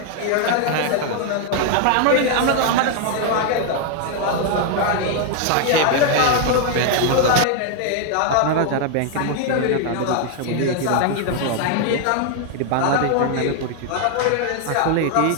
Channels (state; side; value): different; both; correlation 0.00